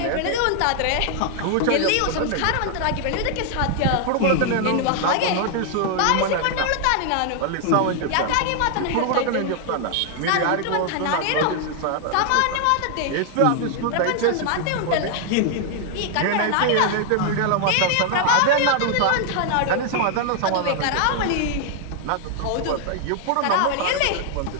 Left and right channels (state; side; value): different; both; correlation 0.00